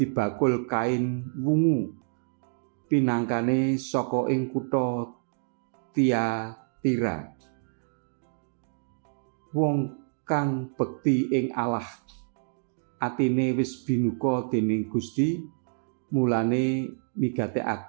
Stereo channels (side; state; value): left; silent; digital silence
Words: bakul kain wungu pinangkane saka ing kutha Tiatira. Wong kang bekti ing Allah, atine wis binuka dening Gusti, mulane